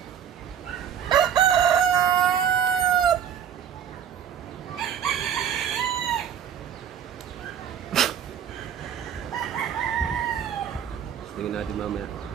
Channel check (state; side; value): quieter; left; 8.8 dB